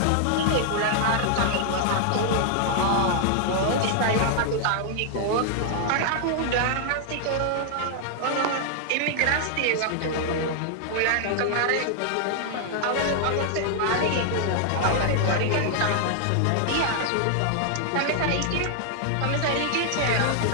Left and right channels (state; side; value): different; both; correlation 0.00